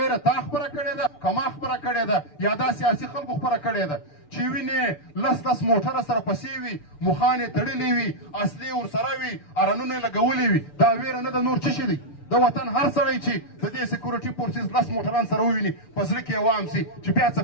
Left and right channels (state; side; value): late; right; 6.8 ms